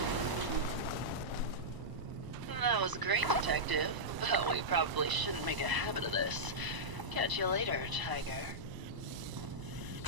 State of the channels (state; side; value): late; left; 1.0 ms